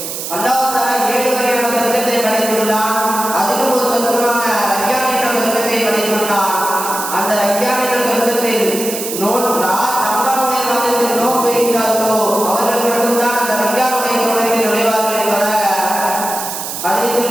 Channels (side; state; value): right; noise; hiss, 6 dB below the sound